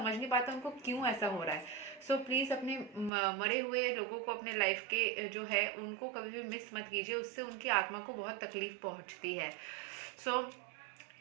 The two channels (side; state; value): left; drops out; at 3.1 s